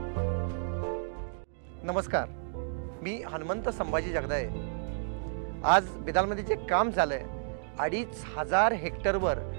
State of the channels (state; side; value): silent; left; digital silence